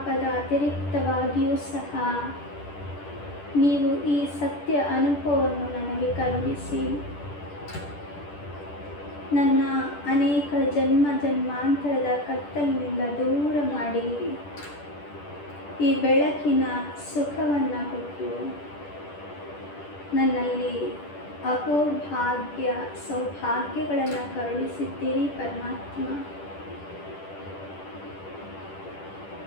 ಅತಿರಿಕ್ತವಾಗಿಯೂ ಸಹ ನೀವು ಈ ಸತ್ಯ ಅನುಭವವನ್ನು ನನಗೆ ಕರುಣಿಸಿ ನನ್ನ ಅನೇಕ ಜನ್ಮಾಂತರದ ಕತ್ತಲಿನಿಂದ ದೂರ ಮಾಡಿ ಈ ಬೆಳಕಿನ ಸುಖವನ್ನು ಕೊಟ್ಟು ನನ್ನಲ್ಲಿ ಅಹೋಭಾಗ್ಯ ಸೌಭಾಗ್ಯಗಳನ್ನು ಕರುಣಿಸಿದ್ದೀರಿ ಪರಮಾತ್ಮ.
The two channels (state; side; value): late; right; 10 ms